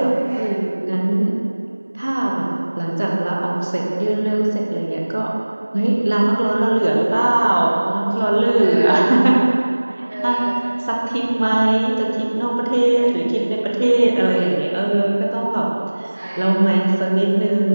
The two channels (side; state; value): both; inverted; correlation -1.00